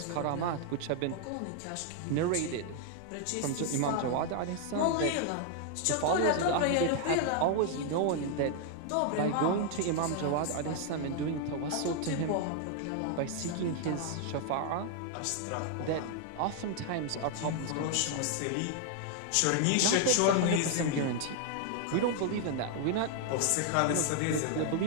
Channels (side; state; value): both; different; correlation 0.00